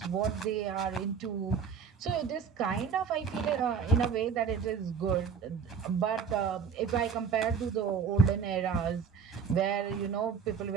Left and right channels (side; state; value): left; quieter; 6.5 dB